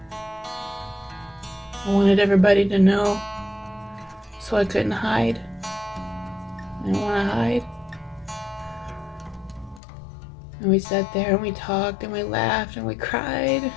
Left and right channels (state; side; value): drops out; right; at 9.8 s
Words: I wanted everybody to know, so I couldn't hide. I didn't want to hide. And we sat there and we talked and we laughed and we cried.